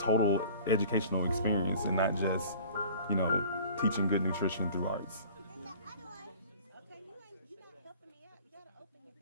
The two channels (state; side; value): inverted; both; correlation -0.46